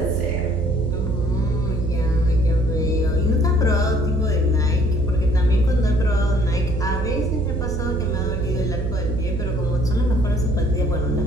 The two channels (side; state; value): right; noise; hum, 3 dB below the sound